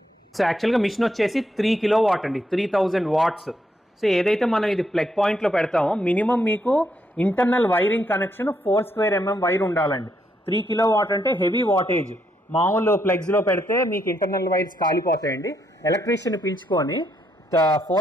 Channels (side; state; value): both; normal; correlation 0.76